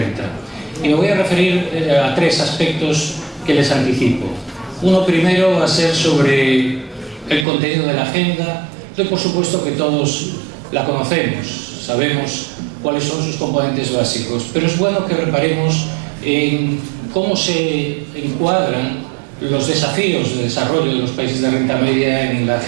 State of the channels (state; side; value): drops out; left; at 7.5 s